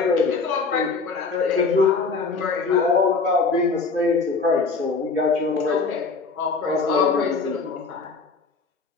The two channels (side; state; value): right; quieter; 4.3 dB